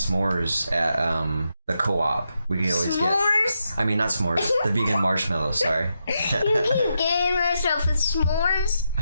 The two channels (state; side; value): inverted; both; correlation -0.84